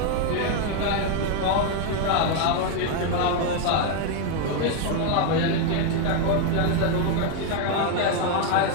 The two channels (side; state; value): both; different; correlation 0.01